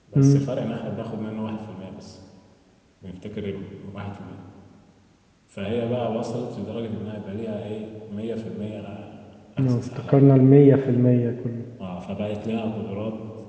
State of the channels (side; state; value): both; identical; correlation 1.00